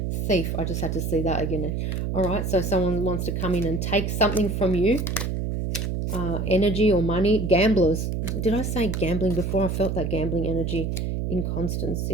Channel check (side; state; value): right; noise; hum, 1 dB below the sound